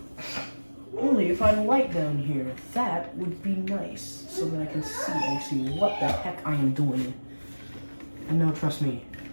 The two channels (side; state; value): both; inverted; correlation -1.00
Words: Only if I had a light down here, that would be nice, so that I can see actually what the heck I am doing. And no, trust me,